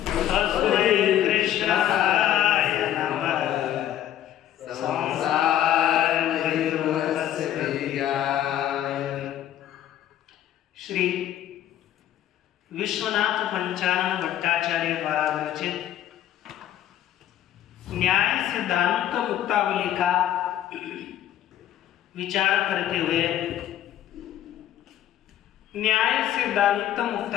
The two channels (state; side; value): quieter; right; 11.7 dB